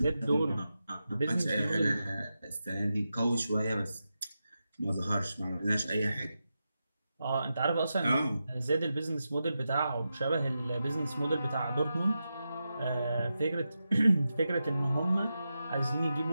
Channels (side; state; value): both; inverted; correlation -0.90